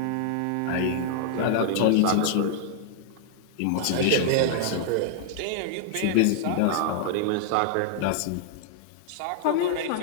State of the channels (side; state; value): both; different; correlation -0.01